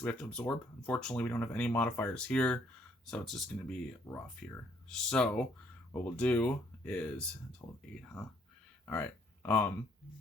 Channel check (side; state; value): both; normal; correlation 0.66